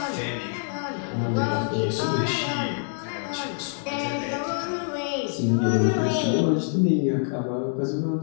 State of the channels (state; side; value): silent; right; digital silence